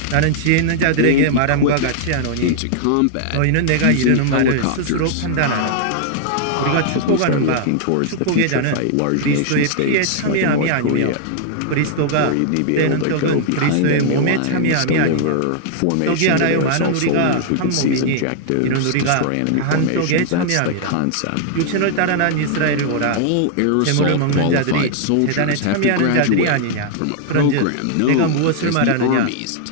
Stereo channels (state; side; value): different; both; correlation -0.01